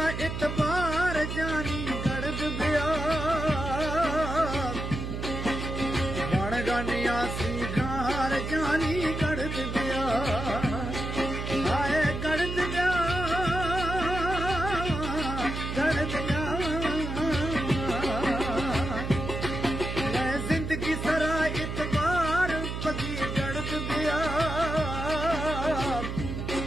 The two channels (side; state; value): right; noise; hum, 5 dB below the sound